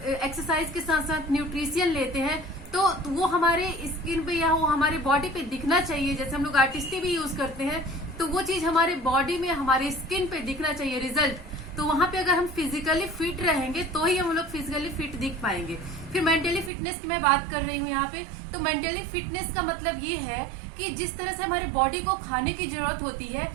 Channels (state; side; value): drops out; left; at 16.7 s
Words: के साथ साथ न्यूट्रिशियन लेते हैं तो वो हमारे स्किन पे या वो हमारे बॉडी पे दिखना चाहिए। जैसे हम लोग आर्टिस्टी भी यूज करते हैं तो वो चीज हमारे बॉडी में, हमारे स्किन पे दिखना चाहिए रिजल्ट। तो वहां पे अगर हम फिजिकली फिट रहेंगे तो ही हम लोग फिजिकली फिट दिख पाएंगे। फिर मेंटली फिटनेस की मैं बात कर रही हूँ यहाँ पे। तो मेंटली फिटनेस का मतलब ये है कि जिस तरह से हमारे बॉडी को खाने की जरूरत होती है